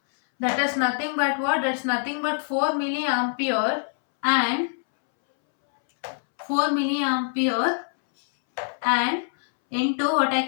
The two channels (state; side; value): silent; right; 62 dB below the other